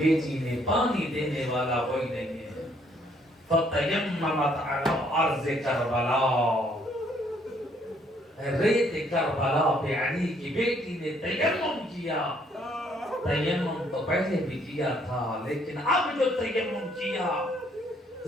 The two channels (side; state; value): both; normal; correlation 0.67